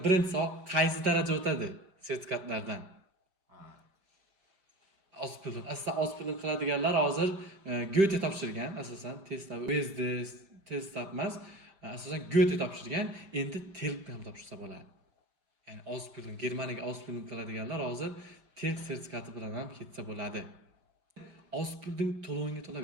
birinchi soat qaysi daraja o'tadi sertifikatlardan? Ausbildung. Aslida Ausbildung qiladiganlar hozir Goethe topshirgan, asosan testlar, USD test emas, asosan Goethe topshirgan, endi TELK ham topshirsa bo'ladi. Ya'ni Ausbildung, Germaniyaga Ausbildung qiladiganlar hozir TELK sertifikati bilan ham ketsa bo'ladi. Ausbildung to'lovingga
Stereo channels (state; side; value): late; left; 5.1 ms